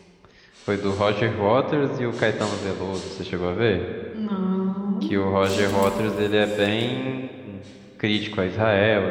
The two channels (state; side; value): identical; both; correlation 1.00